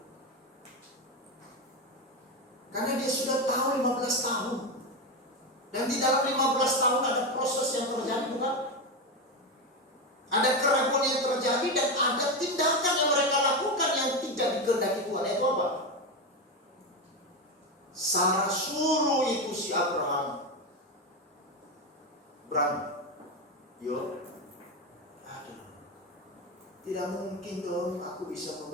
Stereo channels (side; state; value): both; normal; correlation 0.13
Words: karena dia sudah tahu 15 tahun, dan di dalam 15 tahun ada proses yang terjadi, bukan? Ada keraguan yang terjadi dan ada tindakan yang mereka lakukan yang tidak dikehendaki Tuhan. Itu apa? Sarah suruh itu si Abraham, yo, aduh, tidak mungkin dong aku bisa